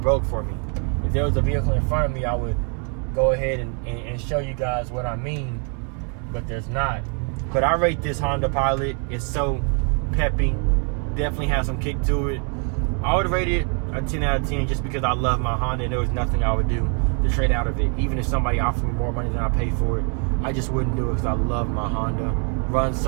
broke for me. If there was a vehicle in front of me, I would go ahead and show you guys what I mean, but there's not. But I rate this Honda Pilot. It's so peppy, definitely has some kick to it. I would rate it a 10 out of 10 just because I love my Honda and there was nothing I would do to trade out of it. Even if somebody offered me more money than I paid for it, I just wouldn't do it because I love my Honda. Runs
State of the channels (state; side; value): quieter; left; 39.4 dB